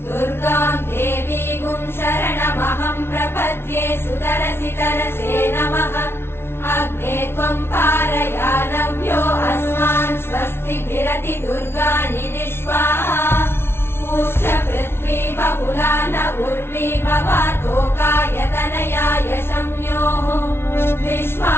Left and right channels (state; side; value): late; right; 0.12 ms